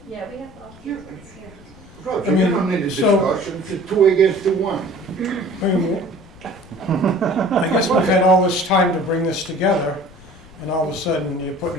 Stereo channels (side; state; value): left; noise; rumble, 22 dB below the sound